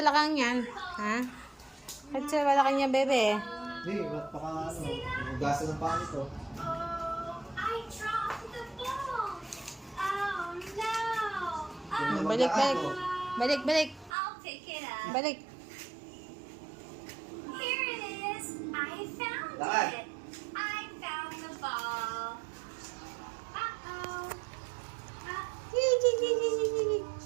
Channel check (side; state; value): left; drops out; at 14.1 s